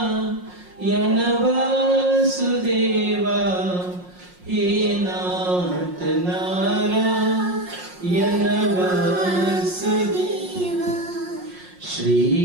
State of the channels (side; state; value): left; late; 5.6 ms